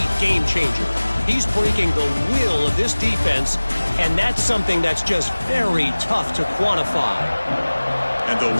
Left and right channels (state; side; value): inverted; both; correlation -1.00